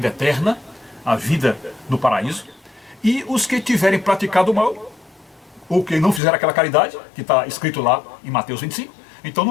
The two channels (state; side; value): drops out; right; at 6.2 s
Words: eterna, a vida no paraíso. E os que tiverem praticado o mal, ou que não fizeram aquela caridade, que está escrito lá em Mateus 25, então